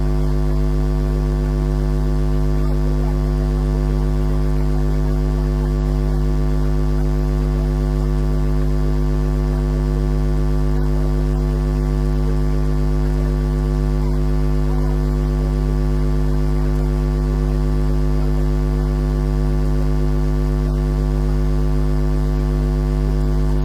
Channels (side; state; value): both; identical; correlation 1.00